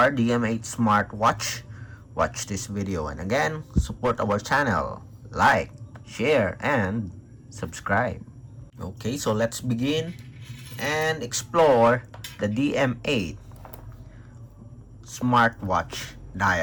DM8 smartwatch, watch this video. And again, support our channel, like, share, and subscribe. Okay, so let's begin and explore the DM8 smartwatch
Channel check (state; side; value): identical; both; correlation 1.00